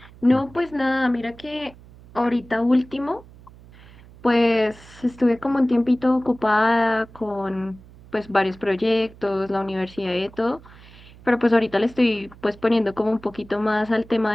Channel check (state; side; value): noise; right; hum, 22 dB below the sound